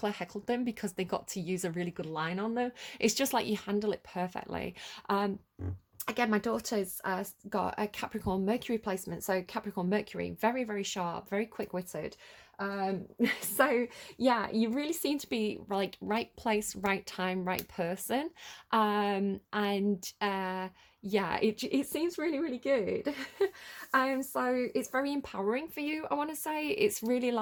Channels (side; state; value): both; identical; correlation 1.00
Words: heckled them because they got to use a really good line on them. It's just like you handle it perfectly. Again, my daughter's got a Capricorn Mercury placement. So Capricorn Mercury, very, very sharp, very quick-witted. So yeah, you really seem to be like right place, right time, right person. Yeah, it seems really, really good. So it's very empowering for you, I want to say. It's really